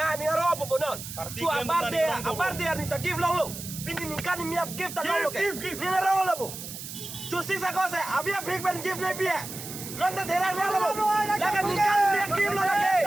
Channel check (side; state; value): right; noise; hiss, 10 dB below the sound